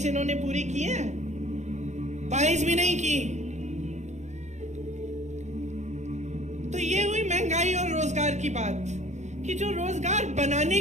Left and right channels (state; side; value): late; left; 0.34 ms